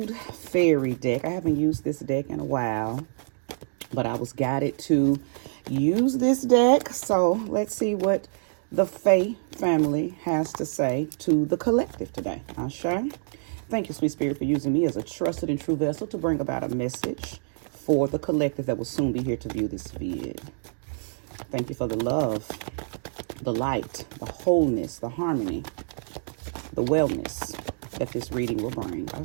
fairy deck. I haven't used this deck in a while, but I was guided to use this deck. So let's see what the Fae family has to say to the collective today. Ashe. Thank you, Sweet Spirit, for using me as a trusted and true vessel to bring about a message for the collective that will soon be here to view this vid. Thank you for the love, the light, the wholeness, the harmony, the wellness that this reading will bring.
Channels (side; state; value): left; silent; digital silence